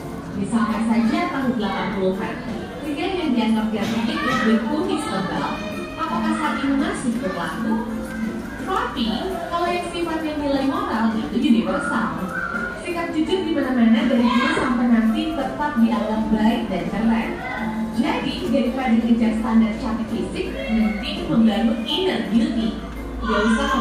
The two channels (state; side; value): identical; both; correlation 1.00